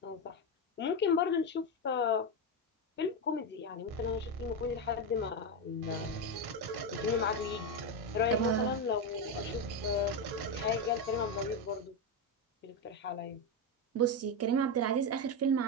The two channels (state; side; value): normal; both; correlation 0.10